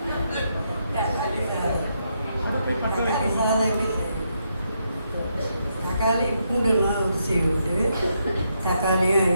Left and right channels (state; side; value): inverted; both; correlation -0.79